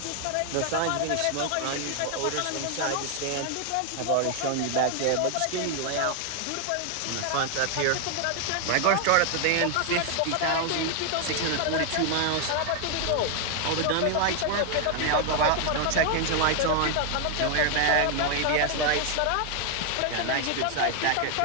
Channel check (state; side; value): different; both; correlation 0.00